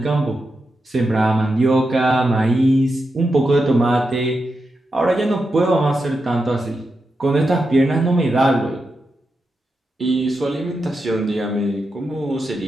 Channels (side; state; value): both; normal; correlation 0.87